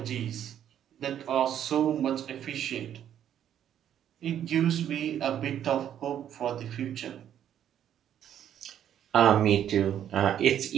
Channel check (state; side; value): quieter; left; 10.2 dB